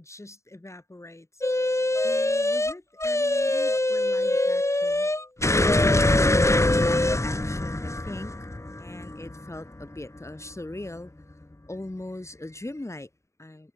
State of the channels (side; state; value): right; late; 0.14 ms